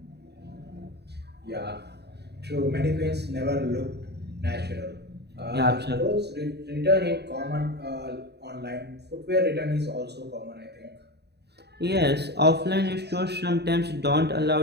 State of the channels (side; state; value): left; late; 0.48 ms